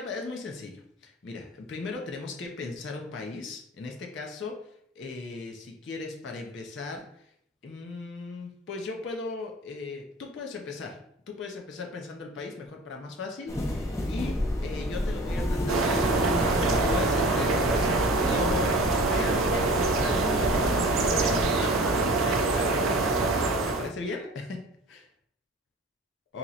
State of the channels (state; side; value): normal; both; correlation 0.40